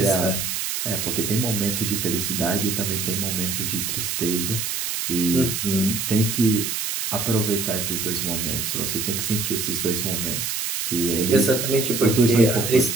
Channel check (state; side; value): noise; right; hiss, 2 dB below the sound